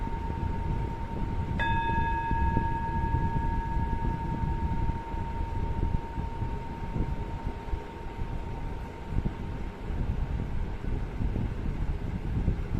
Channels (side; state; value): both; identical; correlation 1.00